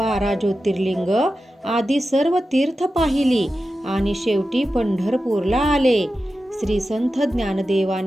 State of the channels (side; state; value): both; normal; correlation 0.92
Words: ज्योतिर्लिंग आदी सर्व तीर्थ पाहिली आणि शेवटी पंढरपूरला आले. श्री संत